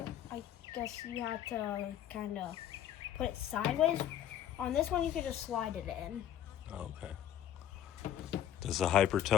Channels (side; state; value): right; quieter; 11.0 dB